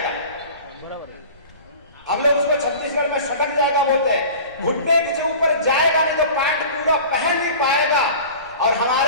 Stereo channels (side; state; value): both; inverted; correlation -0.39